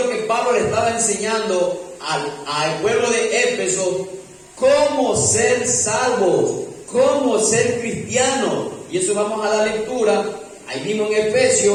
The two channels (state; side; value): identical; both; correlation 1.00